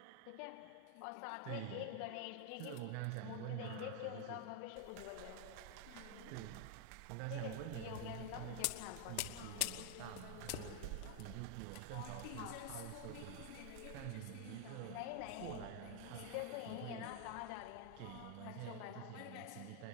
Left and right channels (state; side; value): different; both; correlation 0.00